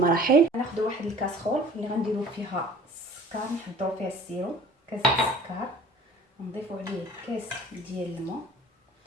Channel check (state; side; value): normal; both; correlation 0.48